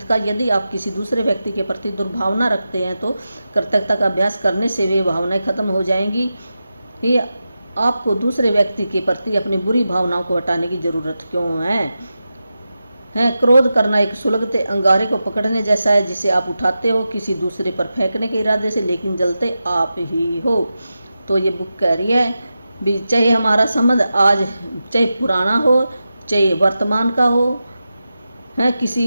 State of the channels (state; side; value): inverted; both; correlation -0.91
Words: का। यदि आप किसी दूसरे व्यक्ति के प्रति दुर्भावना रखते हैं तो कृतज्ञता का अभ्यास करने से वे भावनाएं खत्म हो जाएंगी। ये आपको दूसरे व्यक्ति के प्रति अपनी बुरी भावनाओं को हटाने की ज़रूरत क्यों है। क्रोध करना एक सुलगते अंगारे को पकड़ने जैसा है, जिसे आप उठाते हो किसी दूसरे पर फेंकने के इरादे से, लेकिन जलते आप ही हो। तो ये बुक कह रही है भी चाहे हमारा संबंध आज चाहे पुराना हो चाहे वर्तमान का हो है,